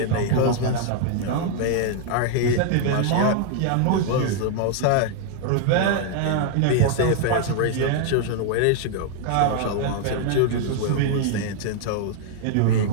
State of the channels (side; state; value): both; different; correlation 0.00